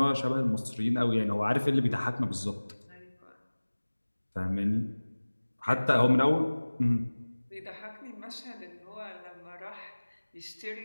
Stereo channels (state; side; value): inverted; both; correlation -1.00